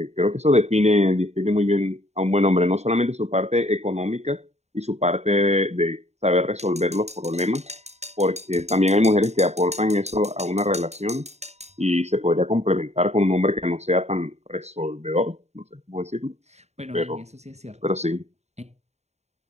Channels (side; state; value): left; late; 0.32 ms